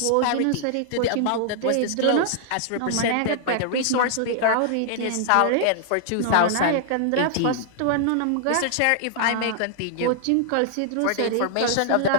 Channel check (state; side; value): different; both; correlation -0.01